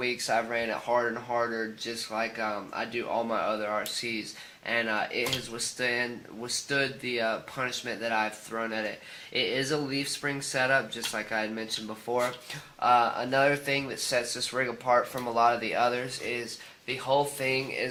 I've ran it harder and harder, just like I do all my other RCs, and it has withstood the punishment that I've thrown at it. It is a leaf spring setup, just like I had mentioned before. Another thing that sets this rig apart from a lot of the others is the whole thing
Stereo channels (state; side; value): identical; both; correlation 1.00